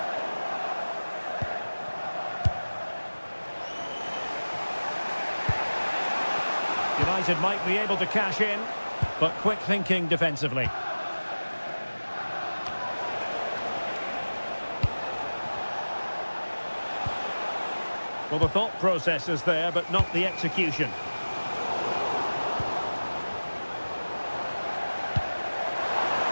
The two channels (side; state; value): both; inverted; correlation -1.00